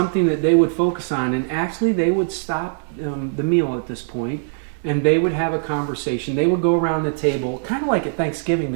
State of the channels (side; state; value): left; silent; digital silence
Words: that they would focus on. And actually, they would stop the meal at this point, and they would have a conversation. They would go around the table, kind of like at Thanksgiving